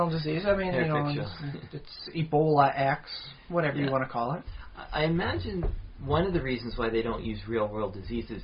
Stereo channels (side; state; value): both; identical; correlation 1.00